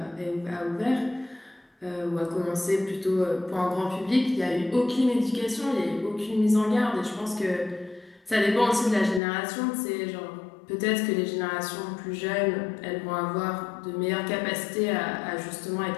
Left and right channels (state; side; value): drops out; right; at 9.2 s